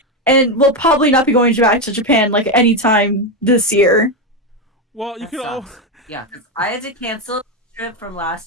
and we'll probably not be going back to Japan like anytime this year. Well, you could all. Yeah, because I had to cancel trip from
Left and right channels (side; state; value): both; normal; correlation 0.09